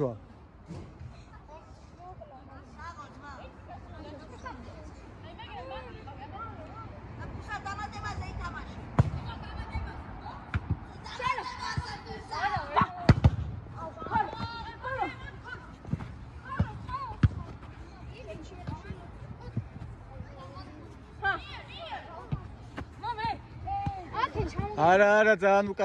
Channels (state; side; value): identical; both; correlation 1.00